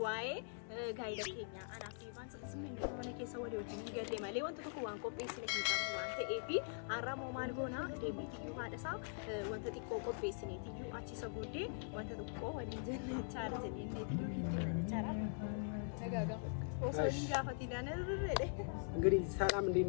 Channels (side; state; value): right; silent; digital silence